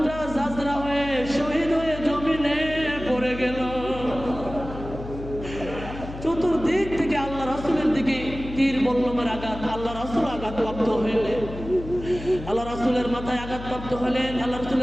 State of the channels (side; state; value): left; noise; hum, 11 dB below the sound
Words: জাজরা হয়ে শহীদ হয়ে জমিনে পড়ে গেল। চতুর্দিক থেকে আল্লাহ রাসূলের দিকে তীর বল্লমের আঘাত। আল্লাহ রাসূল আঘাতপ্রাপ্ত হলেন, আল্লাহ রাসূলের মাথায় আঘাতপ্রাপ্ত হলেন। আল্লাহ